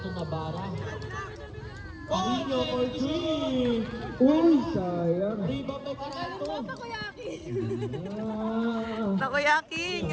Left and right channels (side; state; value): both; identical; correlation 1.00